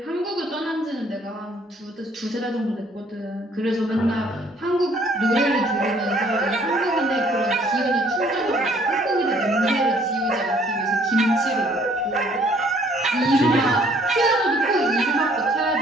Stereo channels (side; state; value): both; normal; correlation 0.61